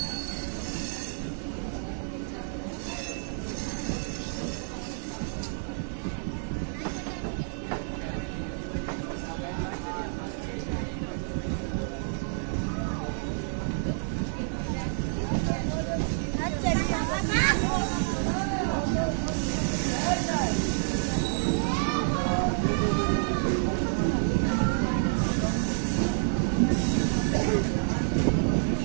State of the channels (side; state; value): left; silent; 59 dB below the other